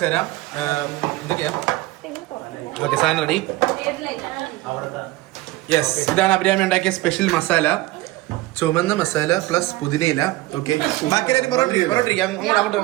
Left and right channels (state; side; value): quieter; left; 18.2 dB